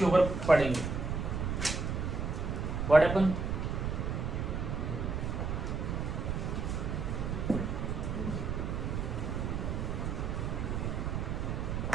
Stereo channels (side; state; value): right; noise; rumble, 1 dB below the sound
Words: ऊपर पढ़ेंगे। What happen?